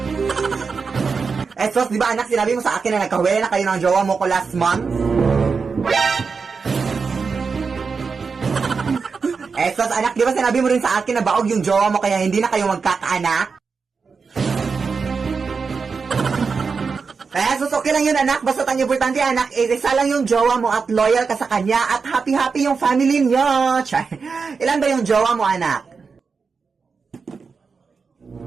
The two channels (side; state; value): left; quieter; 5.1 dB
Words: Sos, di ba anak, sinabi mo sa akin na nagkahuwi na kayo ng jowa mo ko last month? Sos, anak, di ba sinabi mo rin sa akin na baog yung jowa mo kaya hindi na kayo magkakaanak? Sos, okay lang yun, anak. Basta ang importante, anak, isa lang yung jowa mo at loyal ka sa kanya at happy-happy yung family niyo. Chay. Ilan ba yung jowa mo, anak?